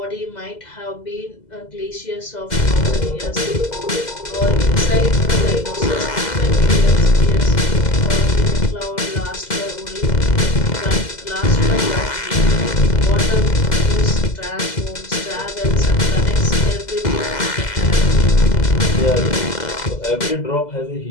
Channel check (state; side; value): late; right; 2.0 ms